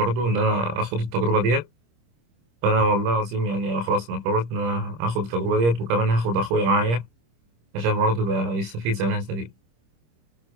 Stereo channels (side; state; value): left; late; 26 ms